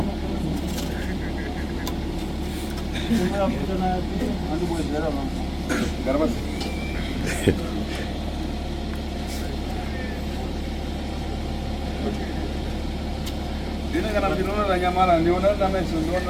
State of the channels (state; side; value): identical; both; correlation 1.00